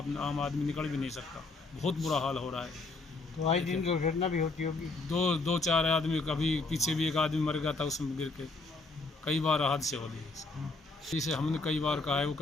आम आदमी निकल भी नहीं सकता। बहुत बुरा हाल हो रहा है। तो आए दिन दुर्घटना भी होती होगी। 2-4 आदमी, कभी पीछे भी एक आदमी मर गया था उसमें गिर के, कई बार हादसे हो गए। इसे हमने कई बार कहा है, वो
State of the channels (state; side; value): quieter; right; 3.5 dB